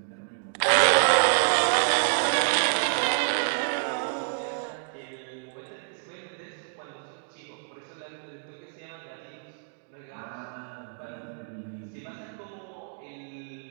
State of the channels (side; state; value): left; silent; 59 dB below the other